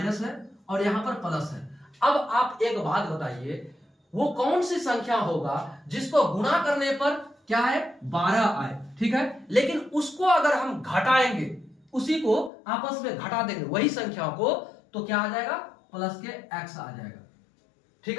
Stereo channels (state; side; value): drops out; right; at 12.5 s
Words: है और यहां पर प्लस है। अब आप एक बात बताइए, वो कौन सी संख्या होगा जिसको गुणा करने पर क्या है, 12 आए, ठीक है। लेकिन उसको अगर हम घटाएंगे, उसी को आपस में घटा देंगे वही संख्या को, तो क्या आ जाएगा, प्लस के x आ जाएगा, ठीक